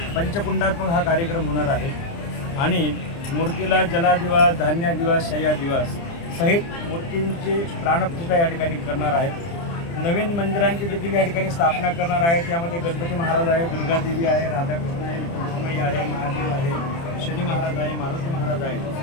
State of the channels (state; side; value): late; right; 30 ms